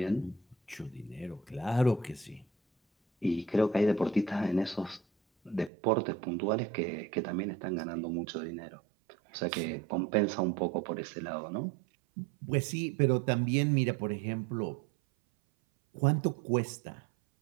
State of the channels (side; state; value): left; drops out; at 5.7 s